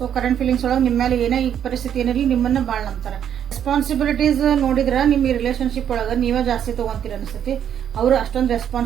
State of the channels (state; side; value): quieter; left; 9.2 dB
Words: ಕರೆಂಟ್ ಫೀಲಿಂಗ್ಸ್ ಒಳಗೆ ನಿಮ್ಮ ಮೇಲೆ ಏನೇ ಈ ಪರಿಸ್ಥಿತಿ ಏನಿರಲಿ ನಿಮ್ಮನ್ನು ಭಾಳ ನಂಬ್ತಾರೆ. ರೆಸ್ಪಾನ್ಸಿಬಿಲಿಟೀಸ್ ನೋಡಿದ್ರೆ ನಿಮ್ಮ ಈ ರಿಲೇಶನ್ಶಿಪ್ ಒಳಗೆ ನೀವೇ ಜಾಸ್ತಿ ತೊಗೊತೀರ ಅನಿಸ್ತೈತಿ. ಅವರು ಅಷ್ಟೊಂದು